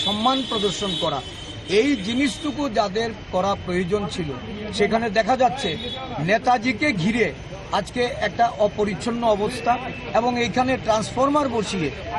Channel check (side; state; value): both; identical; correlation 1.00